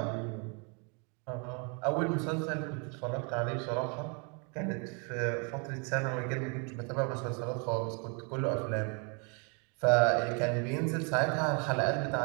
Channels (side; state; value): left; quieter; 35.4 dB